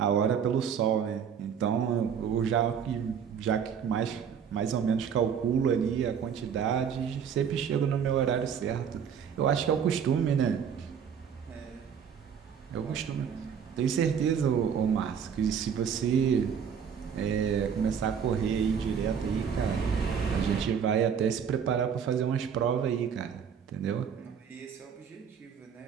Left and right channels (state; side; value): quieter; left; 7.5 dB